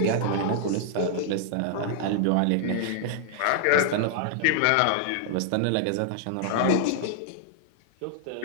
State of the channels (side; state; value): both; different; correlation -0.01